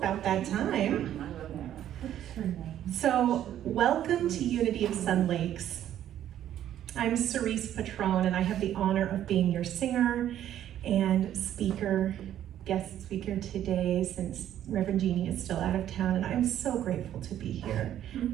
that time. So, welcome to Unity of Sun Lakes. I'm Cerise Patron, and I have the honor of being your singer and guest speaker today, since Reverend Jeannie is still out of town, and I'm so grateful to be here,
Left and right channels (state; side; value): quieter; left; 11.3 dB